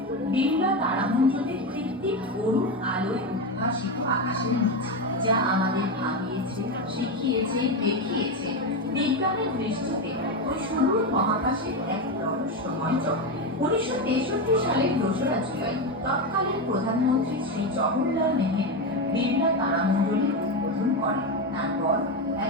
বিড়লা তারামণ্ডলের কৃত্রিম অরুণ আলোয় উদ্ভাসিত আকাশের নিচে, যা আমাদের ভাবিয়েছে, শিখিয়েছে, দেখিয়েছে বিজ্ঞানের দৃষ্টিতে ওই সুদূর মহাকাশের এক রহস্যময় জগৎ। 1963 সালের 2রা জুলাই তৎকালীন প্রধানমন্ত্রী শ্রী জওহরলাল নেহেরু বিড়লা তারামণ্ডলের উদ্বোধন করেন। তারপর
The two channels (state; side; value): normal; both; correlation 0.13